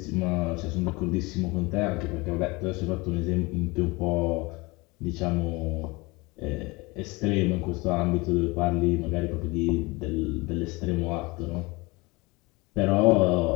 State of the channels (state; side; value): quieter; right; 24.5 dB